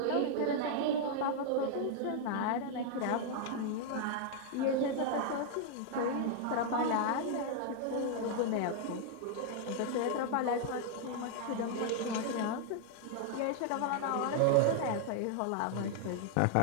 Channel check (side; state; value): both; different; correlation 0.00